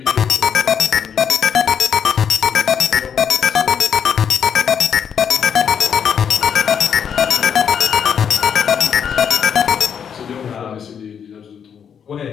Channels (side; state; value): right; quieter; 7.7 dB